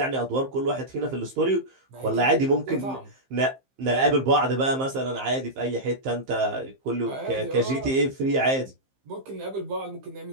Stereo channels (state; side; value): late; left; 15 ms